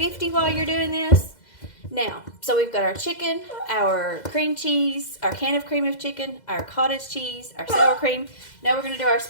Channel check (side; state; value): right; late; 2.0 ms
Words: while you're doing this. Now, so we've got our chicken, our cream cheese, our can of cream of chicken, our cottage cheese, our sour cream. Now we're going to do our